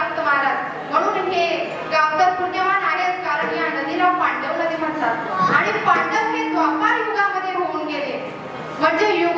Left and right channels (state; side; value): identical; both; correlation 1.00